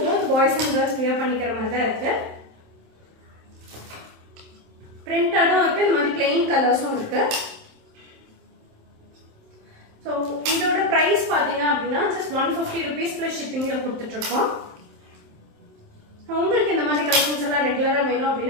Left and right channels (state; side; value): late; left; 27 ms